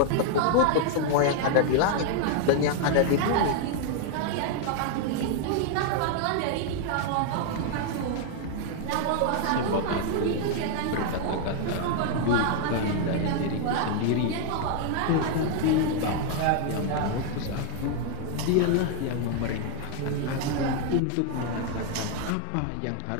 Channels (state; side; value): different; both; correlation 0.00